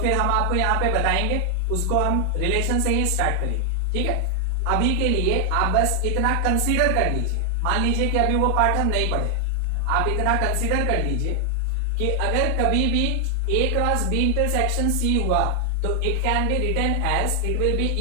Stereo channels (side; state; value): both; different; correlation 0.00